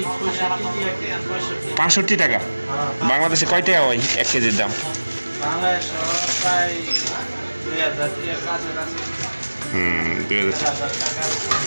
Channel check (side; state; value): both; inverted; correlation -1.00